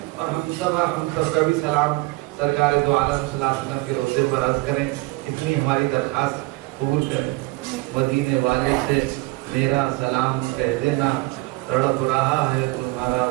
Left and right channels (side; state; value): left; quieter; 22.4 dB